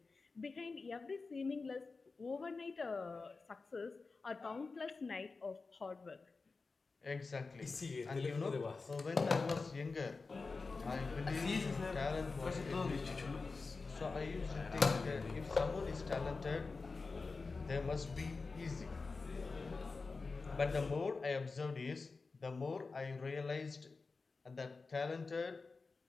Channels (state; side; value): quieter; right; 4.1 dB